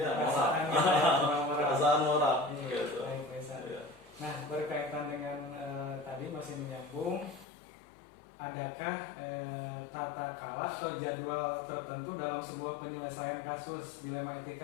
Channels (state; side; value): drops out; right; at 7.5 s